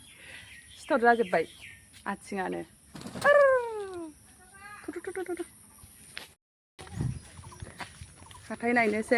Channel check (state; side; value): identical; both; correlation 1.00